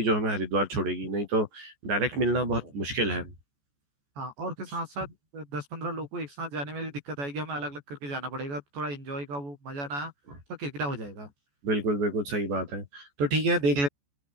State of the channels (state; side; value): late; left; 14 ms